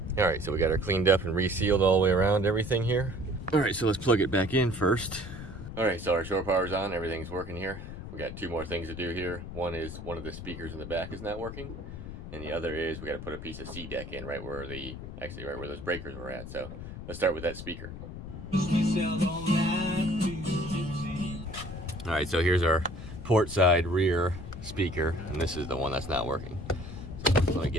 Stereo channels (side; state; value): left; noise; rumble, 10 dB below the sound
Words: All right, so we got her cleaned up and resealed all the way around everything here. All right, so let's plug it back in first. All right, so our shore power's on, everything's working here. We got two more things to do here. One is one of the speakers in the back is not working, and the other is we got to put a piece of C-deck in right where right where those breakers were at. So let's start with that speaker. All right, so here's our port side rear speaker, and this is the one that's not working. So let me